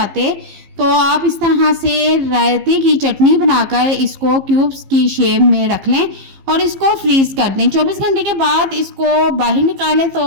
तो आप इस तरह से रायते की चटनी बनाकर इसको क्यूब्स की शेप में रख लें और इसको फ्रीज़ कर दें। 24 घंटे के बाद इसको बाहर निकालें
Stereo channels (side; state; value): left; late; 15 ms